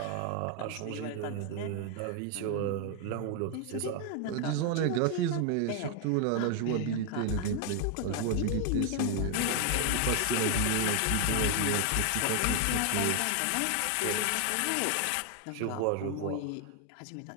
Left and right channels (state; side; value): different; both; correlation 0.00